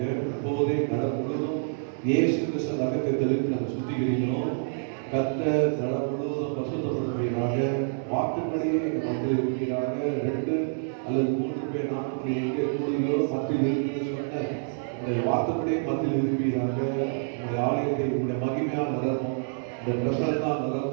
இப்போதே நடம் முழுவதும் இயேசு கிறிஸ்து ரத்தத்தை தெளித்து நாங்கள் சுத்திகரிக்கிறோம். கத்த நடம் முழுவதும் பசுத்தப்படுவீராக. வார்த்தைப்படியே எங்கள் மத்தியில் இருப்பீராக. 2 அல்லது 3 பேர் நாமத்தில் எங்கே கூடுதலோ மத்தியில் இருக்கிறது சொன்ன உங்களுடைய வார்த்தைப்படியே மத்தியில் இருப்பீராக. உங்களுடைய ஆலயத்தை உங்களுடைய மகிமையாக நிரப்பும். இந்த பிரசன்னா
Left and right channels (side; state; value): left; silent; digital silence